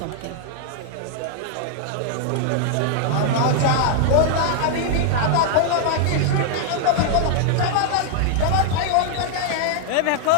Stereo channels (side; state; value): both; different; correlation 0.00